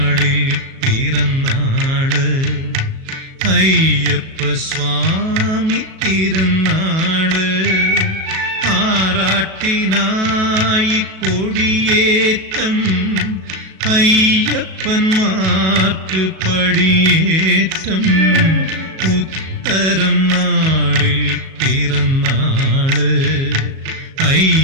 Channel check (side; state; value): left; late; 37 ms